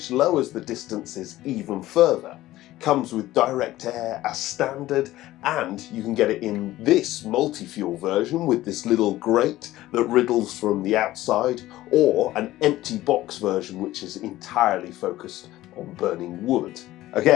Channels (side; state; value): right; quieter; 15.9 dB